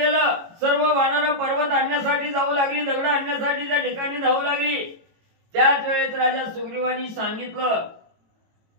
सर्व वानर पर्वत आणण्यासाठी जाऊ लागली दगड आणण्यासाठी त्या ठिकाणी जाऊ लागली. त्याच वेळेत राजा सुग्रीवानी सांगितलं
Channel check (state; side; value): late; left; 18 ms